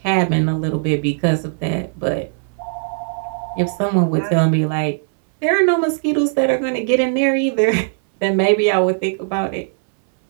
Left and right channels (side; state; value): left; silent; 64 dB below the other